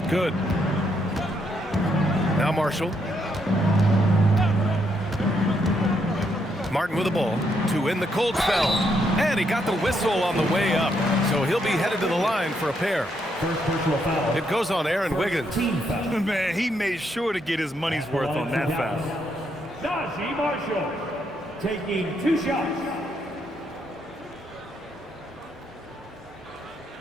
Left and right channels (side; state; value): both; normal; correlation 0.76